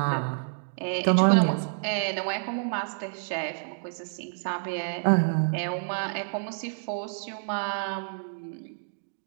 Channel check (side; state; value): left; silent; digital silence